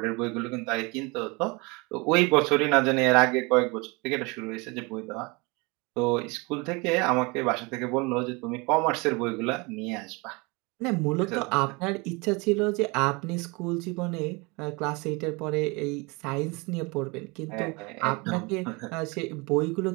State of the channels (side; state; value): left; quieter; 27.3 dB